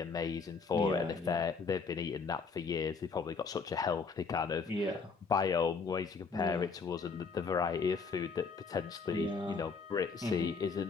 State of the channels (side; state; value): right; quieter; 5.0 dB